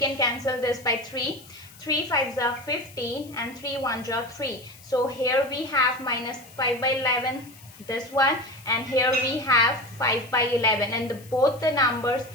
cancel this by 3. 3 5s are 15 and 3 1s are 3. So here we have minus 5 by 11, this one, and here we have 5 by 11, and both the numbers,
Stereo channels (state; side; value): noise; left; hiss, 22 dB below the sound